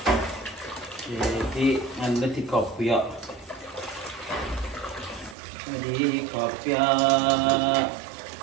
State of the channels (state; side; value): drops out; left; at 5.4 s